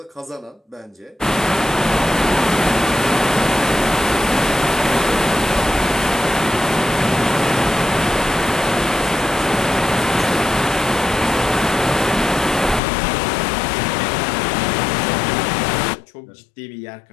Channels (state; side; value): drops out; right; at 12.8 s